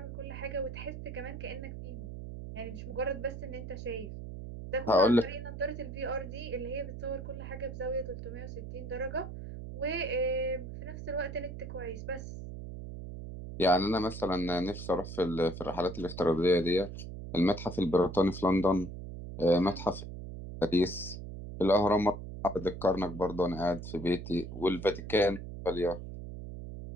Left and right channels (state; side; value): noise; right; hum, 9 dB below the sound